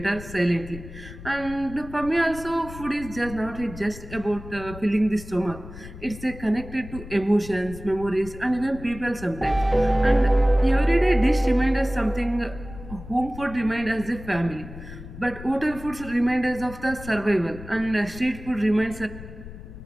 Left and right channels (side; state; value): left; noise; rumble, 14 dB below the sound